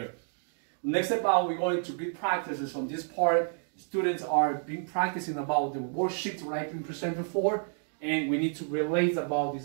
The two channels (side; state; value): left; silent; digital silence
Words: Next step out, we're going to get practices from this part. Students are being practicing about the worksheet that I've been presented for, and we need to relate about this